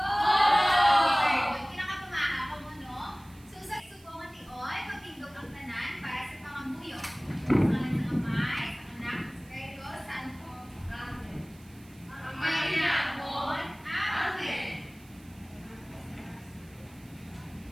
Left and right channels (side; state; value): right; noise; hiss, 26 dB below the sound